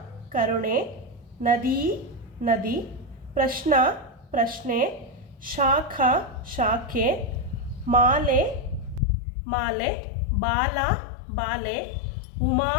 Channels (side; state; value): right; drops out; at 9.0 s